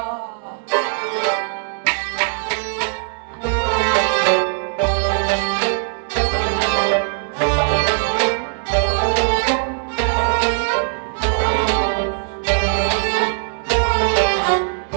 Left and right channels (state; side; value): silent; left; 66 dB below the other